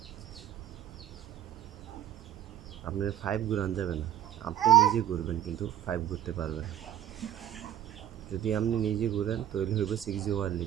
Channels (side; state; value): left; quieter; 11.4 dB